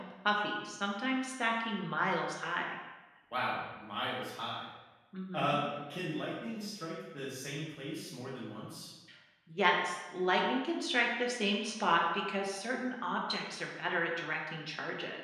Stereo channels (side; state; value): both; identical; correlation 1.00